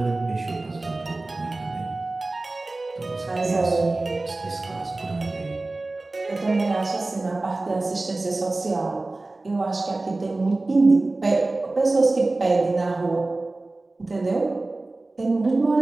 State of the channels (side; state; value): left; quieter; 3.1 dB